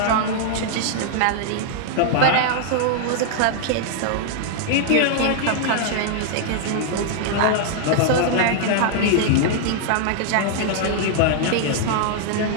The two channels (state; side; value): different; both; correlation -0.01